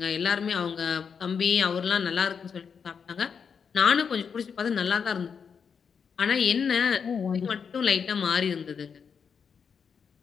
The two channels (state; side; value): quieter; right; 6.4 dB